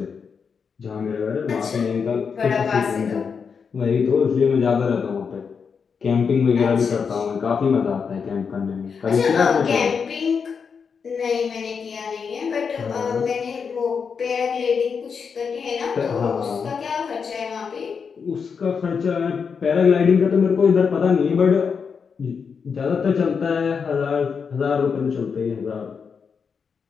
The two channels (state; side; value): quieter; right; 6.0 dB